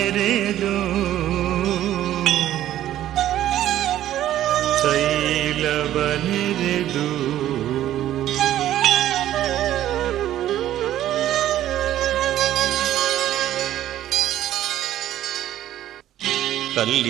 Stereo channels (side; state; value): left; quieter; 12.7 dB